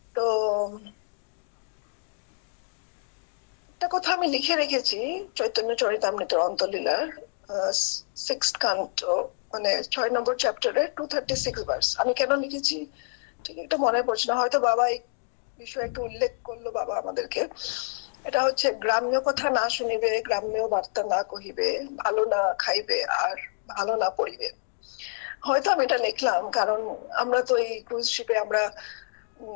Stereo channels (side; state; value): right; silent; digital silence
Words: তো একটা কথা আমি লিখে রেখেছি চৈতন্য চরিতামৃতের অন্তলীলার 6th কান্ট, মানে 6 নম্বর চ্যাপ্টারে 236 ভার্স। আমি কেন লিখেছি ঠিক এটা মনে পড়ছে না, হয়তো বাবা এই বিষয়ে একটু উল্লেখ করলো বাবা আমাদেরকে। এটা হচ্ছে, গ্রাম্য কথা না শুনিবে, গ্রাম্য বার্তা না কহিবে, ভালো না খাইবে আর ভালো না পড়িবে। হয়তো আমি এটা লিখলাম কারণ আমরা তো এই ক্রুজ শিপে আমরা